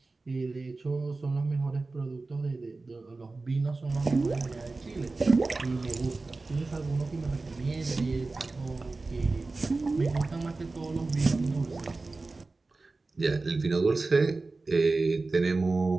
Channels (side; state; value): left; quieter; 3.5 dB